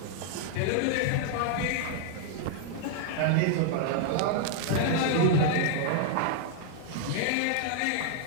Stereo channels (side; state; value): both; different; correlation 0.00